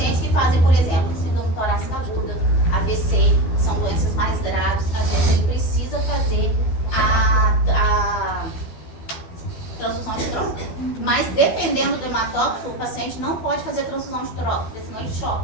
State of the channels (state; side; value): late; right; 12 ms